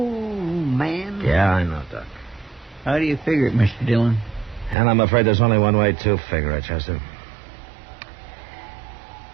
man. Yeah, I know, Doc. How do you figure it, Mr. Dillon? And I'm afraid there's only one way to figure it, Chester.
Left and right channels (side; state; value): left; drops out; at 4.8 s